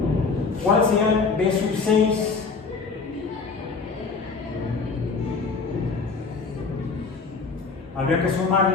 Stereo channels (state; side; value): quieter; right; 4.6 dB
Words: ¿Cuál sería el B sub 6? Habría que